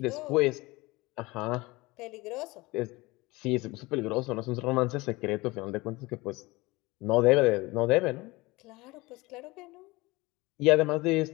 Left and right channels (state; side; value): quieter; right; 22.2 dB